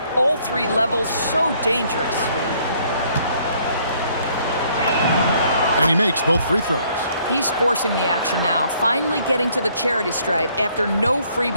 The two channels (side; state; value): both; inverted; correlation -0.64